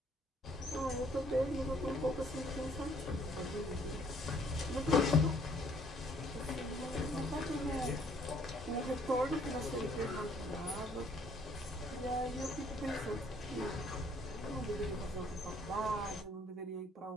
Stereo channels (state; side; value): normal; both; correlation 0.63